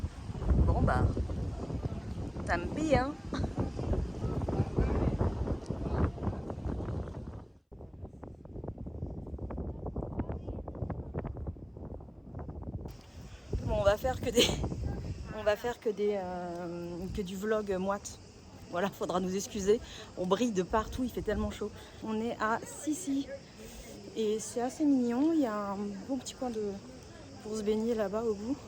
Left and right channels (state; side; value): identical; both; correlation 1.00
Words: Bon bah, tant pis hein. Bon, on va faire que du vlog moite. Voilà, faudra nous excuser. On brille de partout, il fait tellement chaud. On est à Sissi et c'est assez mignon. Il y a un bon petit coin pour se baigner là-bas au bout.